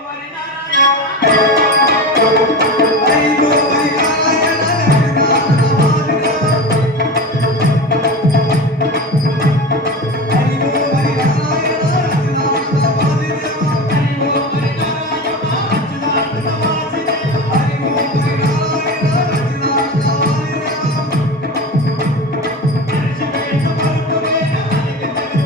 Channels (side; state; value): both; normal; correlation 0.27